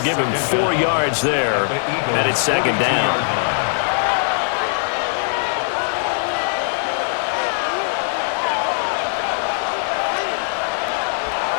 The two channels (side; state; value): right; silent; 63 dB below the other